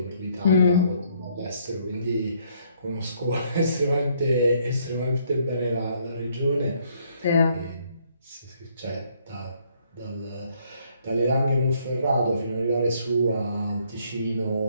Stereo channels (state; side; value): inverted; both; correlation -0.67